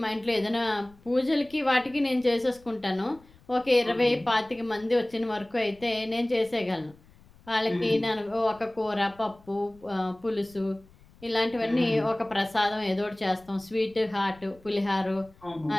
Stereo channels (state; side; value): noise; left; rumble, 27 dB below the sound